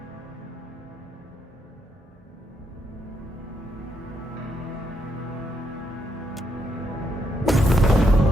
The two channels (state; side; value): normal; both; correlation 0.78